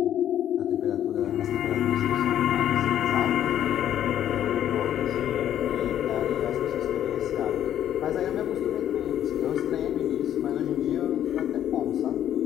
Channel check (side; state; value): right; quieter; 10.9 dB